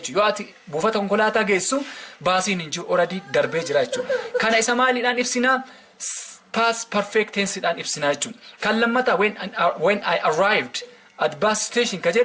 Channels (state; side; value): identical; both; correlation 1.00